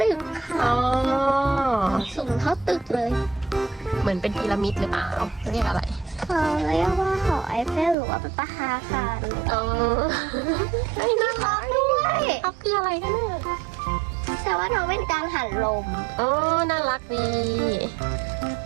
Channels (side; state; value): left; drops out; at 8.0 s